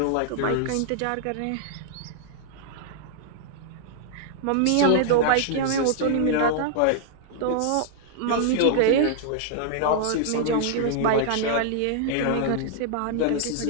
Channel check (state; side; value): different; both; correlation -0.01